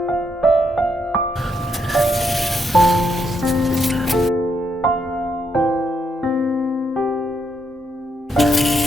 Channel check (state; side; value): normal; both; correlation 0.78